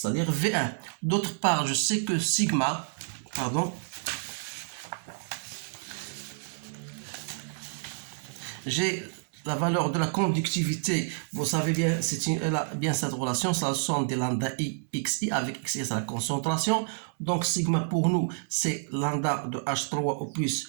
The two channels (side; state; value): left; silent; 58 dB below the other